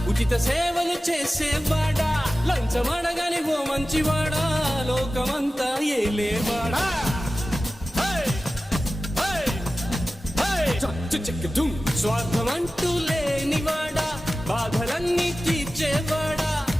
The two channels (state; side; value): normal; both; correlation 0.95